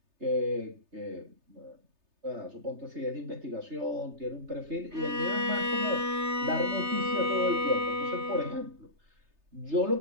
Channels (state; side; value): late; left; 3.3 ms